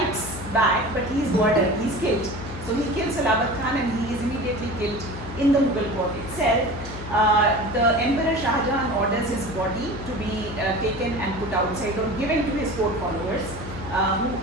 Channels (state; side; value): noise; left; hum, 11 dB below the sound